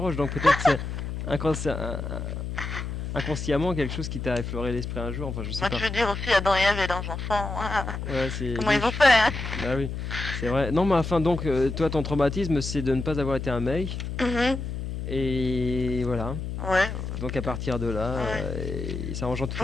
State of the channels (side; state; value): left; noise; hum, 5 dB below the sound